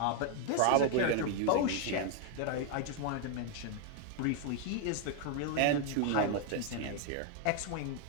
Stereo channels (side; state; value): both; different; correlation 0.00